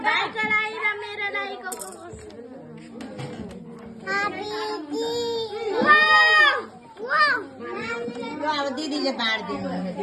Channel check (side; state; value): both; identical; correlation 1.00